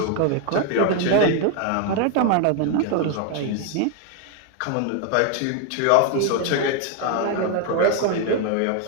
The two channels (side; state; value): both; different; correlation 0.00